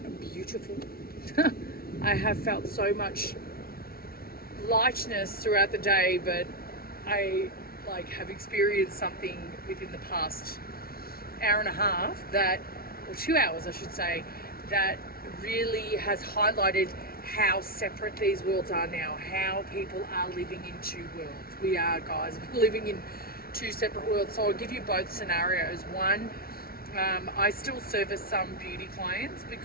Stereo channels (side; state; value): right; late; 0.44 ms